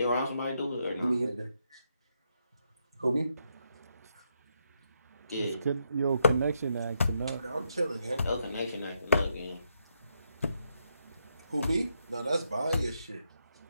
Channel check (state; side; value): inverted; both; correlation -0.79